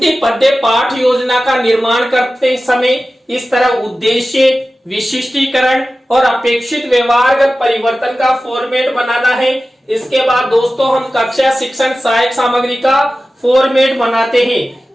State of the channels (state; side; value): normal; both; correlation 0.95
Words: पद्य पाठ योजना का निर्माण करते समय इस तरह उद्देश्य, विशिष्टीकरण और अपेक्षित व्यवहारगत परिवर्तन का फॉर्मेट बनाना है। इसके बाद दोस्तों, हम कक्षा शिक्षण सहायक सामग्री का फॉर्मेट बनाते